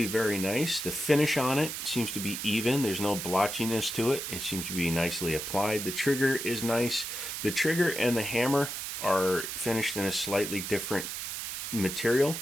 very nice. The finish on it seems to be even. There's no blotchiness to it. It seems to be nicely applied. The trigger is nice. The trigger and the hammer are finished in a slightly different material,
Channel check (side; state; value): right; noise; hiss, 5 dB below the sound